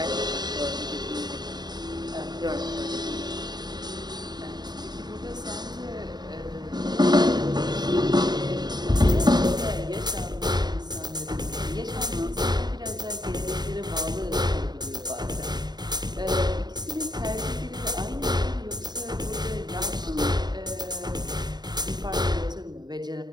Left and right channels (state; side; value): late; left; 0.20 ms